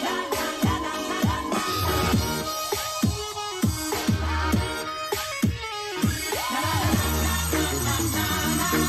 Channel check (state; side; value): identical; both; correlation 1.00